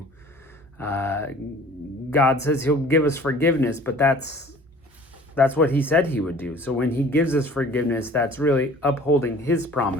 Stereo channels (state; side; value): normal; both; correlation 0.48